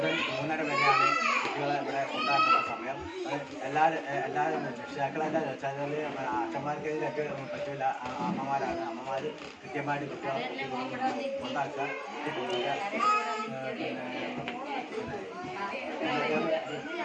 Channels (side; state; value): both; identical; correlation 1.00